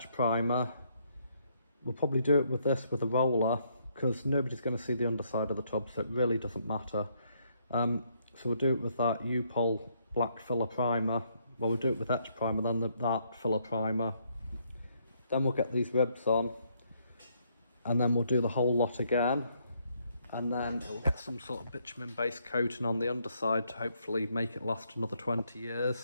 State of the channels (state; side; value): inverted; both; correlation -0.72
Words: primer. We'll probably do it with this with a roller, because nobody's going to see the underside of the tub, so it really doesn't matter. So we'll do it with that U-Pol black filler primer. Well, we'll do it with etch primer, then that filler primer. Then we'll get these ribs on, and then we'll do the whole lot again. And then it'll get some sort of bitumen-based coating on the underside to hopefully make it last another 20